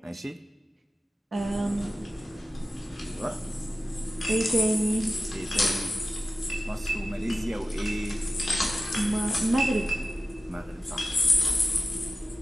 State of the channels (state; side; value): normal; both; correlation 0.94